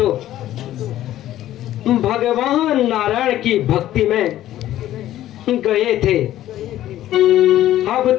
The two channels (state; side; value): quieter; right; 13.3 dB